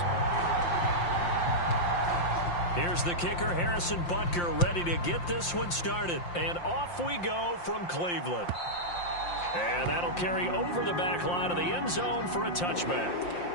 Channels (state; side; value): late; right; 5.7 ms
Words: Here's the kicker, Harrison Butker, ready to get this one started. And off we go from Cleveland. And that'll carry over the back line of the end zone for a touchback.